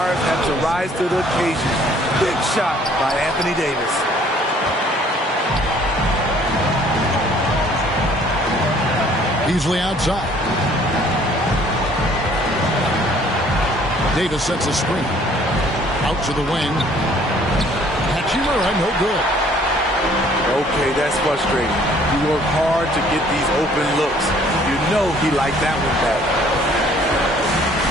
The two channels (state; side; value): normal; both; correlation 0.58